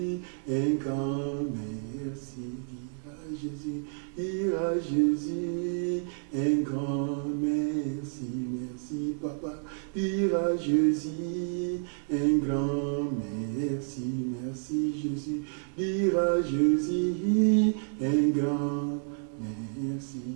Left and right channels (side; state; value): left; silent; digital silence